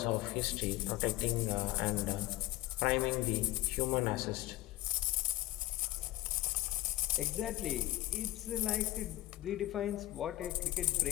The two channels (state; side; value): quieter; right; 16.6 dB